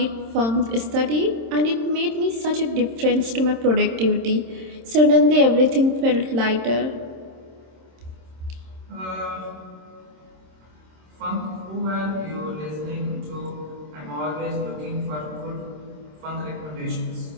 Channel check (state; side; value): late; left; 26 ms